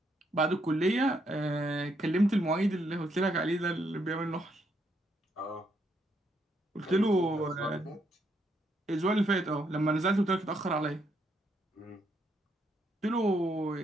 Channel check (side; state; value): both; normal; correlation 0.75